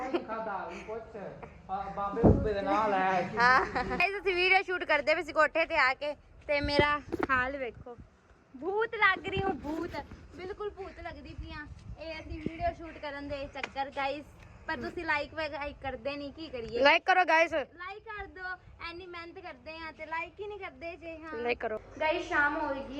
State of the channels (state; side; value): identical; both; correlation 1.00